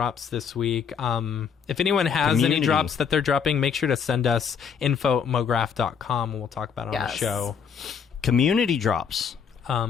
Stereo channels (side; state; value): right; quieter; 6.9 dB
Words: this week. If anyone has any Community. drops that they're dropping, make sure to send us info@mograph.com and we'll talk about it on the Yes. show. Community drops.